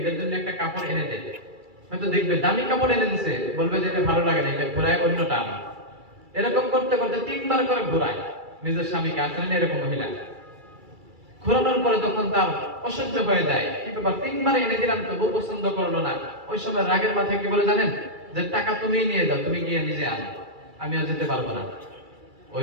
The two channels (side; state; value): left; late; 2.3 ms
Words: জন্য একটা কাপড় এনে দেয়, হয়তো দেখবে দামি কাপড় এনে দিছে, বলবে যে এটা ভালো লাগে না, এটা ঘোরায় অন্যটা আনা। এরকম করতে করতে 3 বার করে ঘোরায় নিজের স্বামীকে। আসলে এরকম মহিলা ঘোরানোর পরে তখন তার অসহ্য হয়ে যায়, কি ব্যাপার 3 বার এনে দিলাম তবু পছন্দ করলো না। ওই সময় রাগের মাথায় কি বলে জানেন? যে টাকা তুমি নিয়ে যাও, তুমি গিয়ে নিজে আনো, আমি আর যেতে পারবো না।